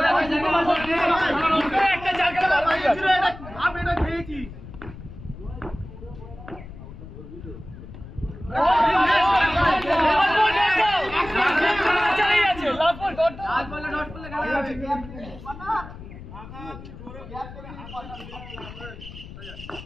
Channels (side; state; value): left; noise; rumble, 14 dB below the sound